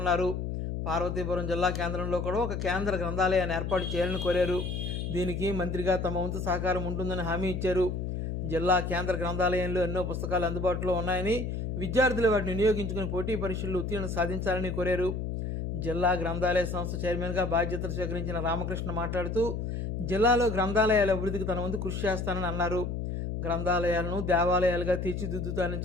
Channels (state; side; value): noise; left; hum, 3 dB below the sound